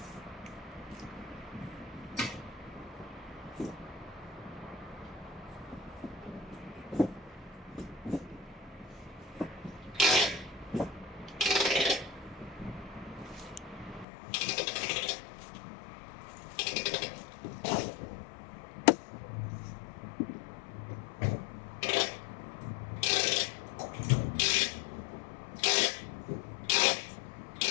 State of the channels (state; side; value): drops out; right; at 14.1 s